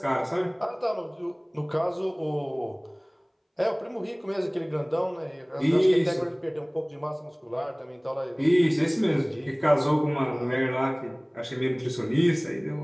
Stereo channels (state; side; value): identical; both; correlation 1.00